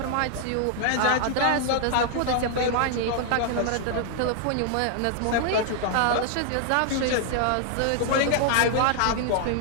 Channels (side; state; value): both; different; correlation 0.00